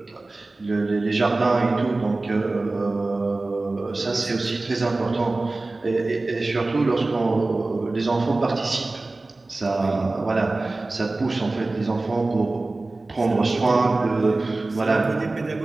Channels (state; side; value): quieter; left; 3.2 dB